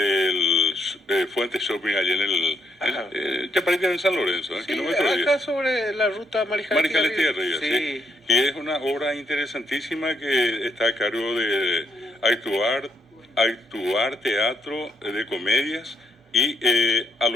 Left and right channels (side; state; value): both; normal; correlation 0.75